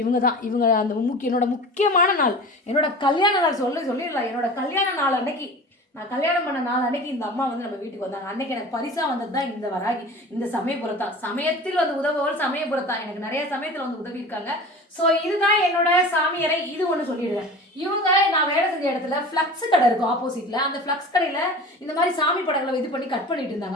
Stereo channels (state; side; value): normal; both; correlation 0.37